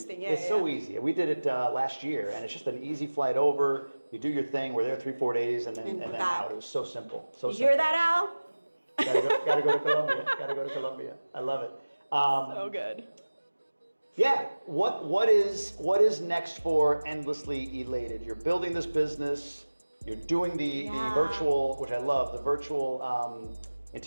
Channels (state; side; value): inverted; both; correlation -1.00